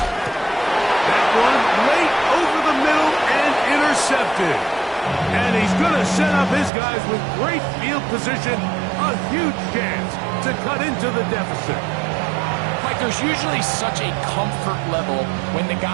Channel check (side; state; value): left; drops out; at 6.7 s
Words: That one late over the middle and intercepted. And he's going to set up his guys with great field position. A huge chance to cut into the deficit. Like, there's usually such a comfort level when the